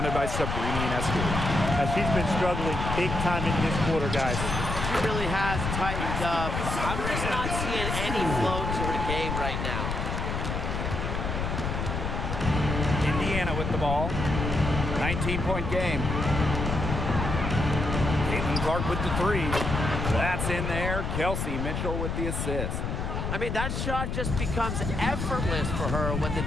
by Sabrina Ionescu. She's been struggling big time in this quarter, guys. She really has tightened up. I'm just not seeing any flow to her game right now. Indiana with the ball. 19-point game. Caitlin Clark with the three. That's in there. Kelsey Mitchell with the assist. I mean, that shot just becomes effortless for her when the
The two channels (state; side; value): noise; left; rumble, 2 dB below the sound